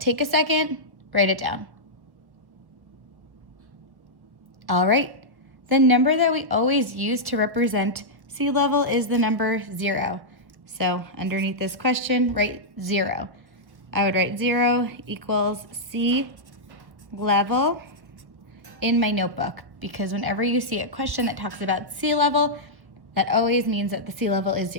a second, write it down. All right, the number that we always use to represent sea level is the number 0. So underneath this question, write 0. I would write 0 equals sea level in my notebook because whenever you see a question that talks about sea level, that always means that the sea level is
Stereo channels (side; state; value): left; late; 1.2 ms